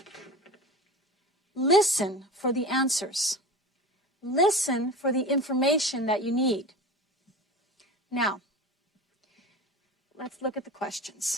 Listen for the answers. Listen for the information that you need. Now, let's look at the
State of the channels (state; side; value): normal; both; correlation 0.32